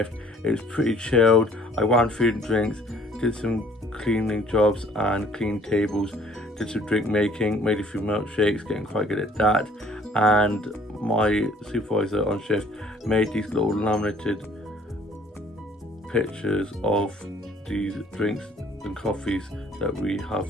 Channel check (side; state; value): both; normal; correlation 0.56